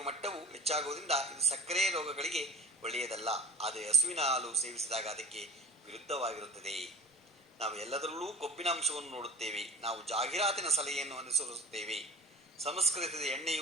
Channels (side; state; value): both; normal; correlation 0.36